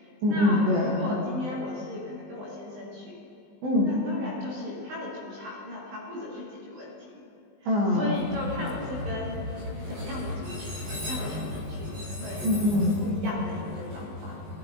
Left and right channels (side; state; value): left; late; 20 ms